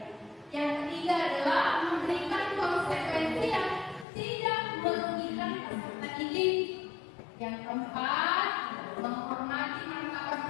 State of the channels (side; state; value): right; drops out; at 4.0 s